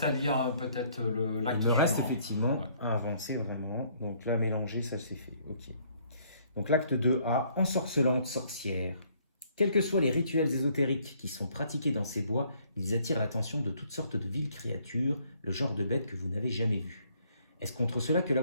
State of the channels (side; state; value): both; inverted; correlation -0.64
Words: à lire peut-être l'acte Il me reste suivant. effectivement Ouais. à avancer vraiment. Donc là, mélanger, ça c'est fait. Ok. Donc l'acte 2A, ensorcelante sorcière. Quels que soient les rituels ésotériques qui sont pratiqués dans ces bois, ils attirent l'attention de toutes sortes de viles créatures, le genre de bêtes que vous n'avez jamais vues. Est-ce contre cela que la